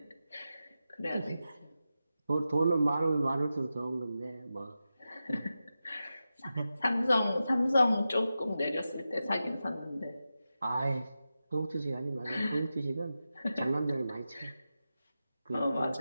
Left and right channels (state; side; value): inverted; both; correlation -0.91